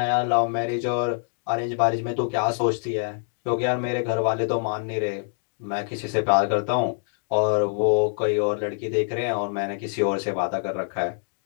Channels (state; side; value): silent; right; digital silence